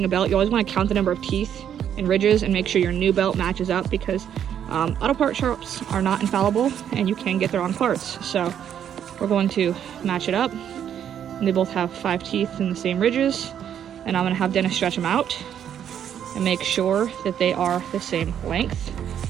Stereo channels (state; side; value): quieter; left; 9.4 dB